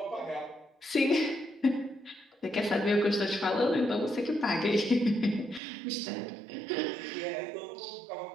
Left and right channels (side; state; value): left; drops out; at 5.6 s